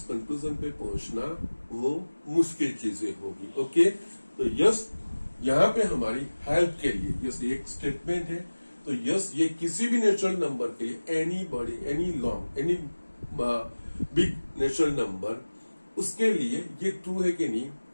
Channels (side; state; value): both; inverted; correlation -1.00